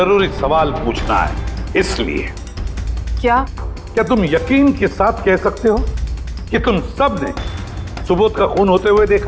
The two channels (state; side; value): identical; both; correlation 1.00